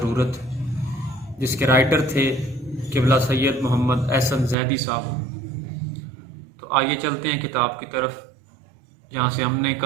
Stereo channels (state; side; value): drops out; left; at 4.5 s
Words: جس کے رائٹر تھے قبلہ سید محمد احسن زیدی صاحب۔ تو آئیے چلتے ہیں کتاب کی طرف، جہاں سے ہم نے